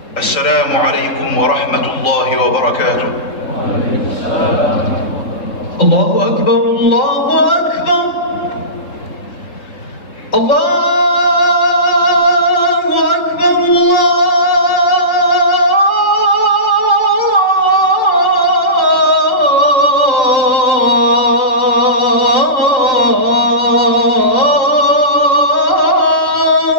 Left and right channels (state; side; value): late; right; 3.7 ms